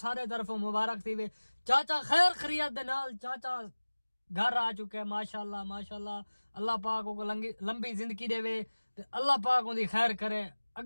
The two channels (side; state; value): both; inverted; correlation -1.00